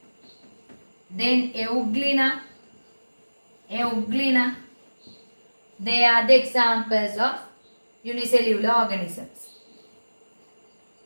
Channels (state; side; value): inverted; both; correlation -1.00